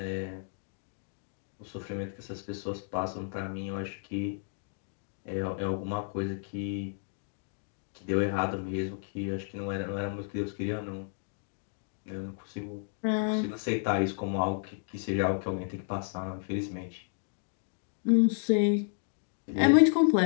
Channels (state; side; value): silent; right; digital silence